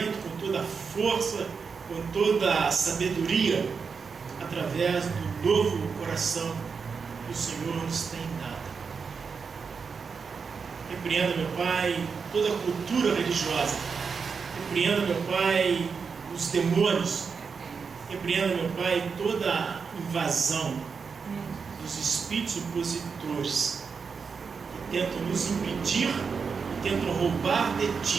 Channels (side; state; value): left; quieter; 5.5 dB